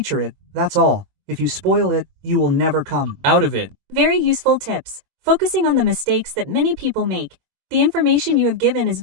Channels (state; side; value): late; left; 23 ms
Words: it, that's all. If you spoil it, you will never come out of it. Very useful tips. Focusing on the mistakes that many people make. The information you have given is